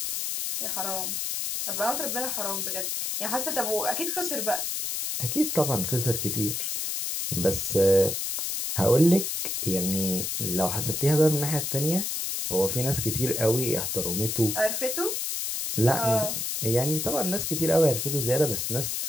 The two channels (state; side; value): noise; left; hiss, 2 dB below the sound